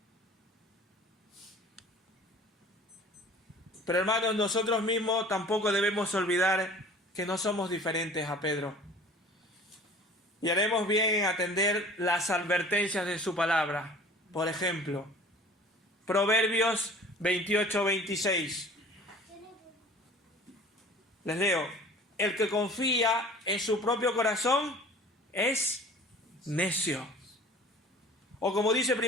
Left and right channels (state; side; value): normal; both; correlation 0.46